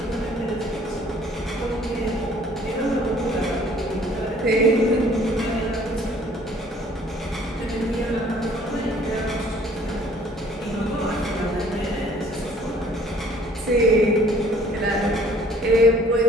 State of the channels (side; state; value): both; normal; correlation 0.56